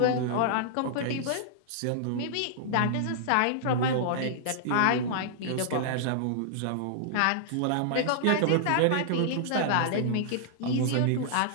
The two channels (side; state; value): both; different; correlation -0.01